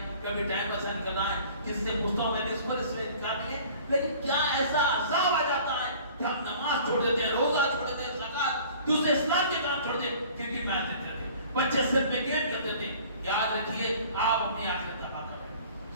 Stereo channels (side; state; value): both; inverted; correlation -0.48